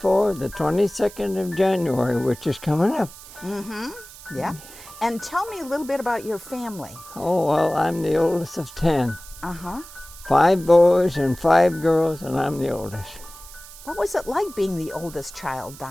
the 22nd of January, which is coming up. Mm-hmm. Yeah. And tell me a little bit about your family. Oh, well, I'm the oldest of 10. Uh-huh. 5 boys and 5 girls, and I'm the oldest. What was it like being the oldest child,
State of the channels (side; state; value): right; noise; hiss, 18 dB below the sound